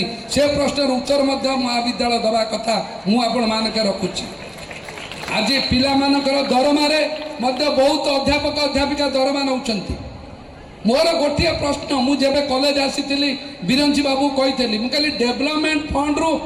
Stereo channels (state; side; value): identical; both; correlation 1.00